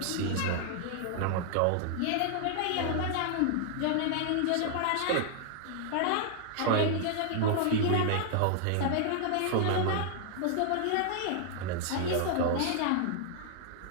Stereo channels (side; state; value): both; different; correlation 0.00